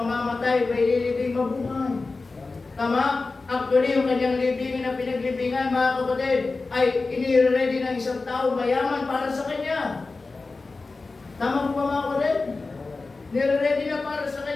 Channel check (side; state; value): right; quieter; 3.8 dB